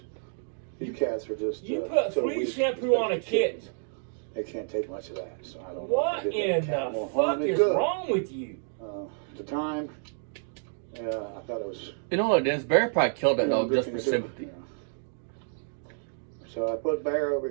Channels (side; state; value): left; silent; digital silence